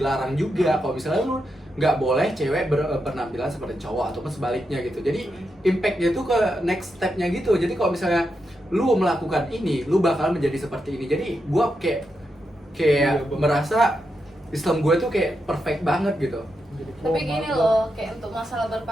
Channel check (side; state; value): both; normal; correlation 0.85